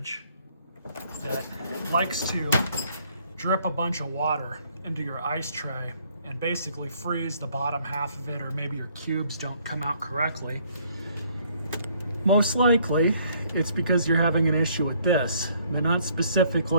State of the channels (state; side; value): inverted; both; correlation -0.63